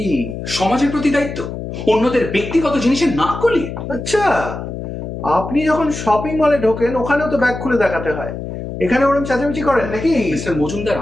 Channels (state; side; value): noise; left; hum, 7 dB below the sound